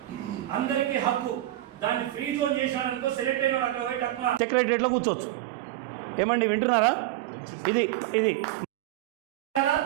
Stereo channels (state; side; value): quieter; left; 15.0 dB